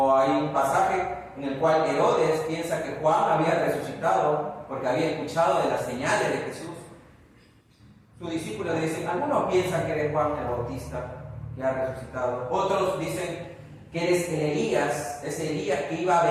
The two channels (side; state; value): both; identical; correlation 1.00